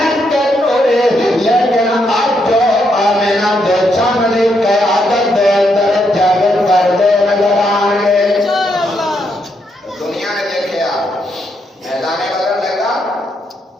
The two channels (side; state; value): both; normal; correlation 0.78